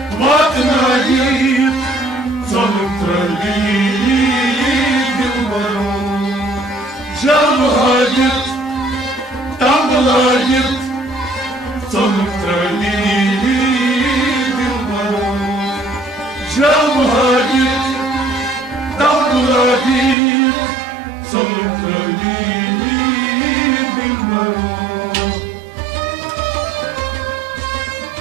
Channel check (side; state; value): left; drops out; at 20.2 s